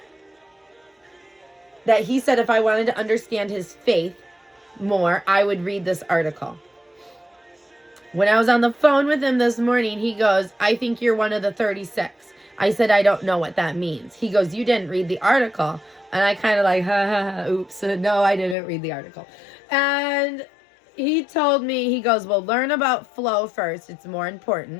That he said if I wanted to understand his faith more, I would read this article. When I was on the phone with him this morning, he goes, I think you're one of the 36. I said, I don't know what that means. He goes, you didn't read the article. And I kind of like, ha, ha, ha, oops. No, I didn't read the article. And he told me, he goes, well, learn about flow first. It's more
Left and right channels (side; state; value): right; drops out; at 18.6 s